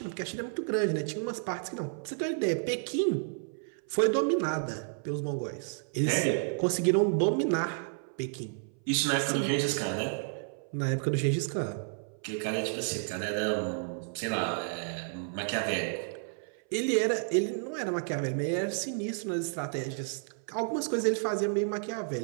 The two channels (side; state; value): left; silent; 57 dB below the other